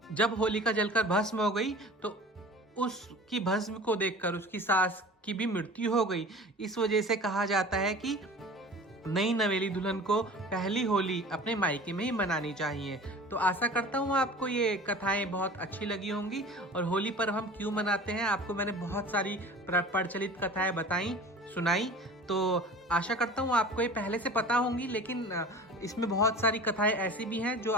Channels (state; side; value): normal; both; correlation 0.40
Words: जब होलिका जलकर भस्म हो गई तो उसकी भस्म को देखकर उसकी सास की भी मृत्यु हो गई। इस वजह से कहा जाता है कि नई नवेली दुल्हन को पहली होली अपने मायके में ही मनानी चाहिए। तो आशा करता हूँ आपको ये कथाएं बहुत अच्छी लगी होंगी। और होली पर हम क्यों मनाते हैं आपको मैंने बहुत सारी प्रचलित कथाएं बताई, सुनाई। तो आशा करता हूँ आपको ये पहले से पता होंगी, लेकिन इसमें बहुत सारी कथाएं ऐसी भी हैं जो